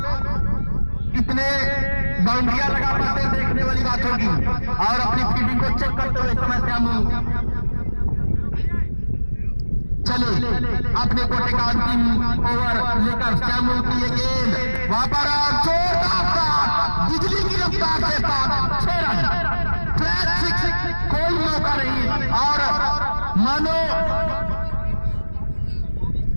कितने बाउंड्रियां लगा पाते हैं देखने वाली बात होगी, और अपनी फील्डिंग को चेक करते हुए समय श्यामू चले अपने कोटे का अंतिम ओवर लेकर। श्यामू की ये गेंद वहां पर जोरदार बिजली की रफ्तार से 6 रन, कोई मौका नहीं, और मानो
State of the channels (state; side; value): inverted; both; correlation -1.00